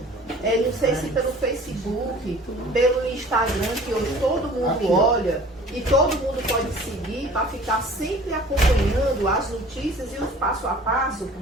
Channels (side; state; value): both; normal; correlation 0.47